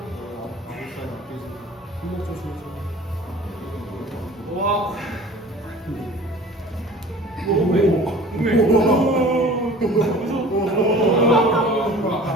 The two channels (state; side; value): normal; both; correlation 0.44